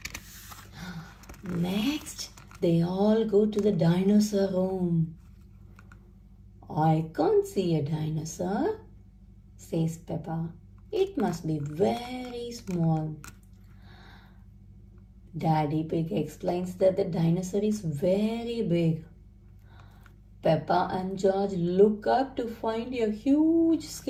Next, they all go to the dinosaur room. I can't see a dinosaur, says Peppa. It must be very small. Daddy Pig explains that the dinosaur is very big. Peppa and George look up to find a huge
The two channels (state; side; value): identical; both; correlation 1.00